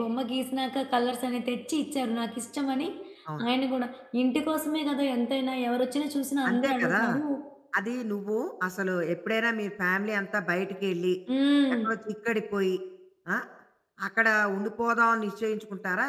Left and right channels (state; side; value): identical; both; correlation 1.00